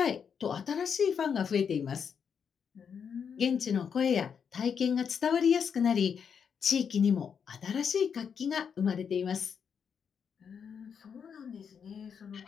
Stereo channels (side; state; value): right; quieter; 7.0 dB